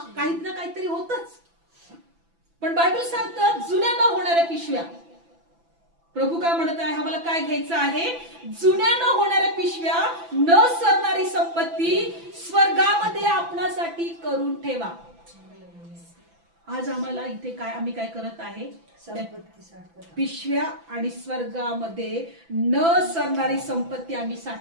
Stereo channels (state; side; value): late; left; 6.0 ms